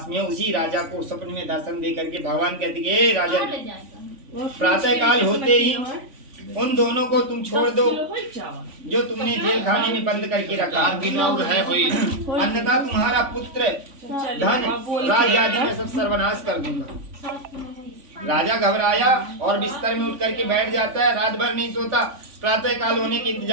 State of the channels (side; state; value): left; late; 3.5 ms